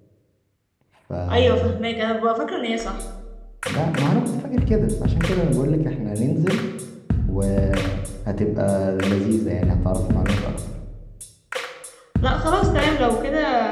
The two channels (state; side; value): identical; both; correlation 1.00